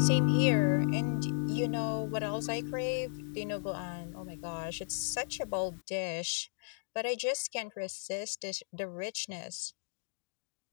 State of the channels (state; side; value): silent; right; digital silence